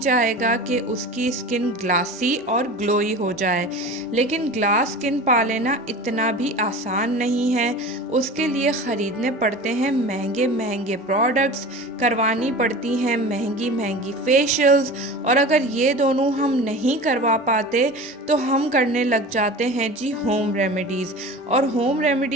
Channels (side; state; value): both; normal; correlation 0.35